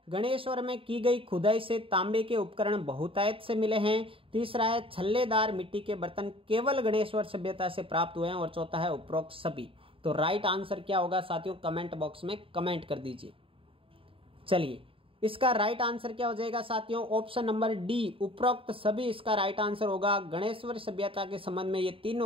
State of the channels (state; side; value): late; left; 0.26 ms